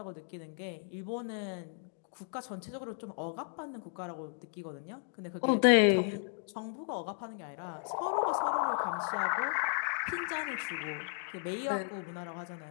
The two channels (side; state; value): right; silent; digital silence